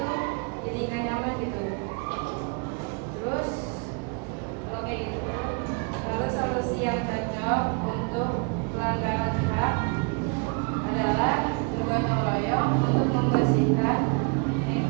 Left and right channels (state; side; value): quieter; left; 33.7 dB